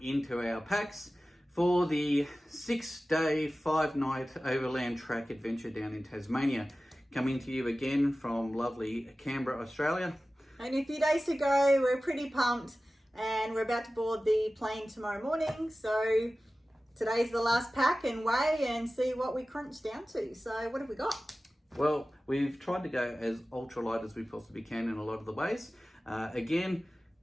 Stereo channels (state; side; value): normal; both; correlation 0.96